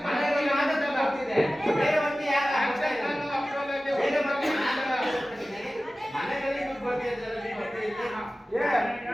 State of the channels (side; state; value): both; normal; correlation 0.96